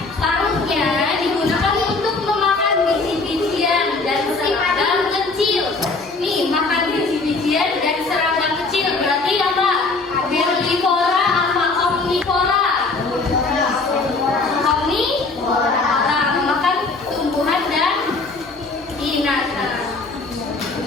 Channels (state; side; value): quieter; right; 3.7 dB